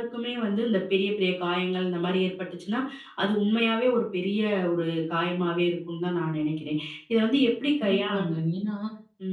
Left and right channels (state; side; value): identical; both; correlation 1.00